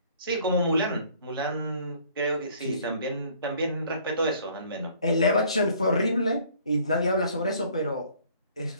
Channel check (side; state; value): both; inverted; correlation -0.57